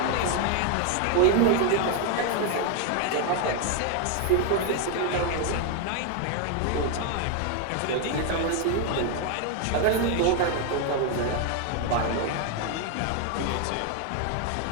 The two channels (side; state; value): both; different; correlation 0.01